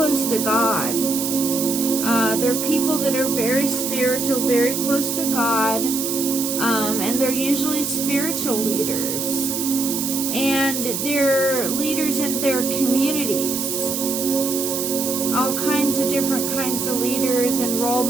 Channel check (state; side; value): noise; right; hiss, 3 dB below the sound